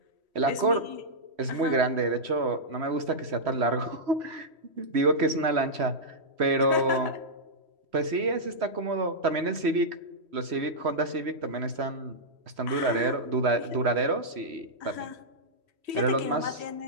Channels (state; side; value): late; left; 3.1 ms